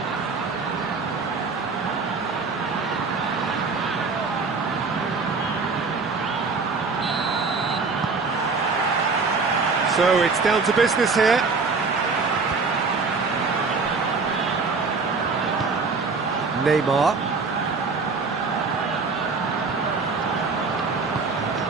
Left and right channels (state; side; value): quieter; left; 4.5 dB